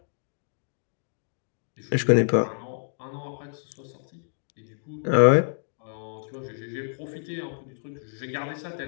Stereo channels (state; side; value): silent; right; digital silence